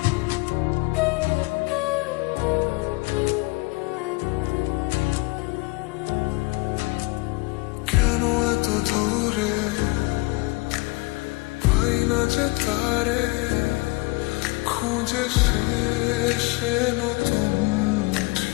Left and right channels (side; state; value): right; quieter; 25.6 dB